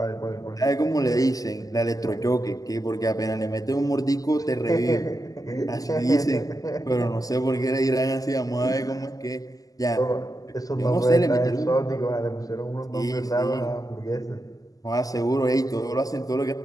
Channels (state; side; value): late; right; 0.17 ms